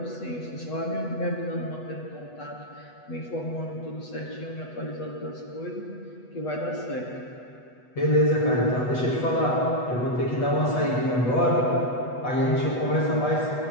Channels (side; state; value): right; late; 8.1 ms